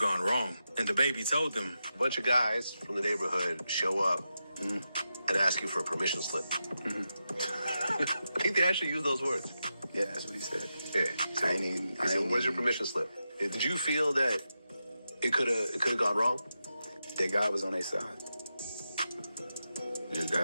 wrong. And DaBaby told him, "A bunch of guys from the neighborhood show up and ask you for a permission slip." I think they actually used those words. Yeah, that's what he said. Yeah. I He said, "Where's your permission slip?" Did you feel that it could have gone wrong? That God was on their side. That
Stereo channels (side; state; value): both; inverted; correlation -0.89